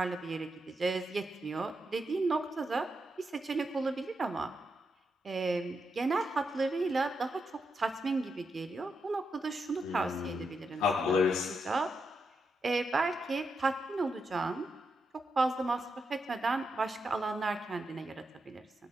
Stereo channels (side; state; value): both; normal; correlation 0.84